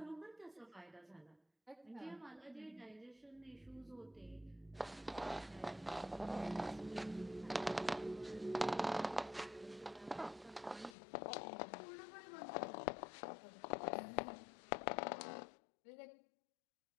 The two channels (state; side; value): drops out; right; at 11.0 s